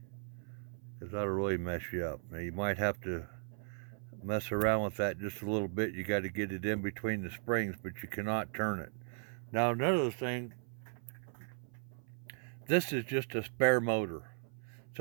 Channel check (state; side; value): silent; left; 53 dB below the other